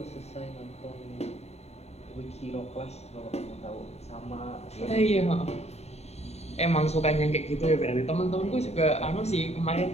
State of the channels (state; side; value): late; right; 0.31 ms